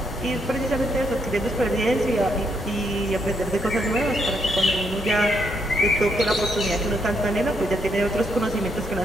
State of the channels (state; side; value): normal; both; correlation 0.76